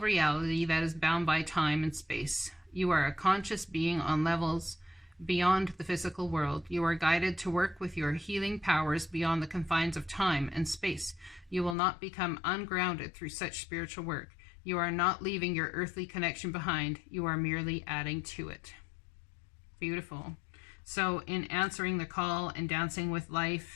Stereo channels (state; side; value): drops out; right; at 11.8 s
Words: reality that is bound by time and space. You are a conscious being on levels beyond the physical world. You are guided to work with your healing powers beyond the confines of time and space. You will not become ungrounded through such spiritual work. You are not leaving your earthly connection behind. You are merely adding to it. Beautiful. So in answering the call and dancing with